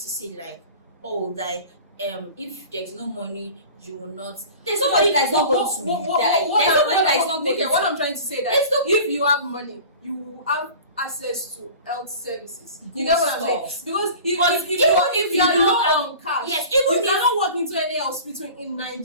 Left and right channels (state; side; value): inverted; both; correlation -0.40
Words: say like, oh, like if there's no money, you will not. There's nobody that is not going to die. There's nobody that is not going to. What I'm trying to say that if you have money, you will have access to health services. You get what I'm saying? Because if you are low on cash, yes, you cannot walk into any hospital in